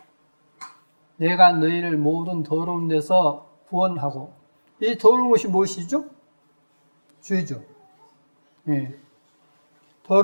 내가 너희를 모든 더러운 데서 구원하고. 이 더러운 것이 무엇이죠? 죄죠.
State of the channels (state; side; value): inverted; both; correlation -1.00